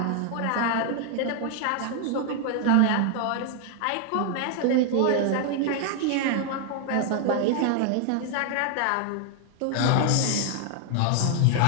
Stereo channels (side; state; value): both; different; correlation 0.00